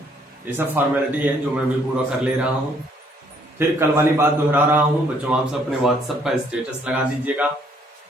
ये सब फॉर्मेलिटी है जो मैं भी पूरा कर ले रहा हूँ। फिर कल वाली बात दोहरा रहा हूँ बच्चों, आप सब अपने व्हाट्सएप का स्टेटस लगा दीजिएगा।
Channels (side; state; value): both; normal; correlation 0.66